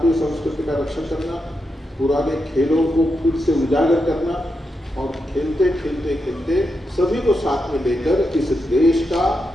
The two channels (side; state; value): both; normal; correlation 0.86